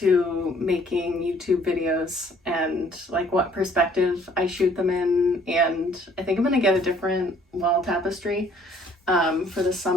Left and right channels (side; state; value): both; normal; correlation 0.59